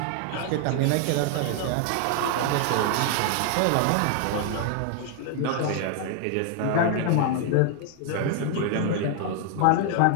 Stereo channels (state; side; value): different; both; correlation 0.00